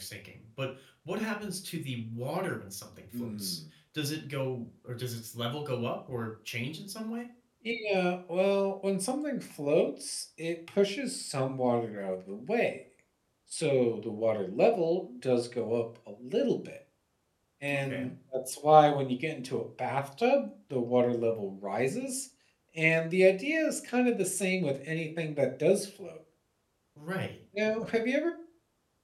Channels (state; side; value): identical; both; correlation 1.00